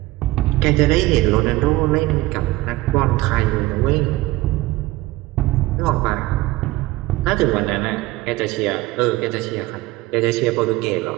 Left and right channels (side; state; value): left; quieter; 18.7 dB